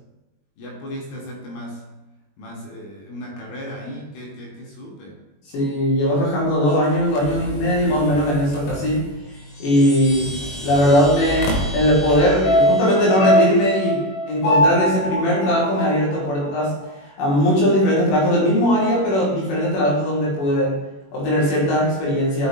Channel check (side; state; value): right; late; 21 ms